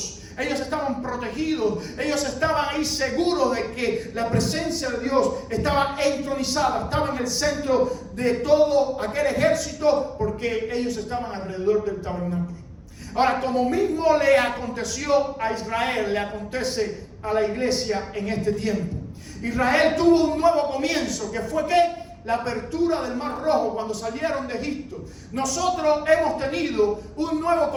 Ellos estaban protegidos, ellos estaban ahí seguros de que la presencia de Dios estaba entronizada, estaba en el centro de todo aquel ejército, porque ellos estaban alrededor del tabernáculo. Ahora, como mismo le aconteció a Israel, le acontece a la iglesia en este tiempo. Israel tuvo un nuevo comienzo, que fue ¿qué? La apertura del Mar Rojo cuando salieron de Egipto. Nosotros hemos tenido un nuevo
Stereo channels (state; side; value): identical; both; correlation 1.00